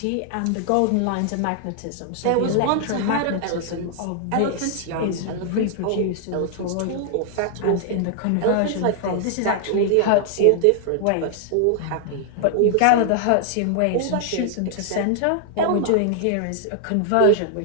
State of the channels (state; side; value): different; both; correlation 0.00